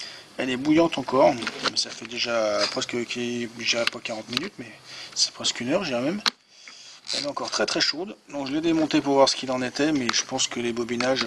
Elle est bouillante encore. Ça fait déjà presque, déjà pas 40 minutes, mais c'est presque une heure, je dirais même. Elle est encore très très chaude. Donc je l'ai démontée pour voir ce qu'il en était, mais je pense que les bobinages,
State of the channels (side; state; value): both; identical; correlation 1.00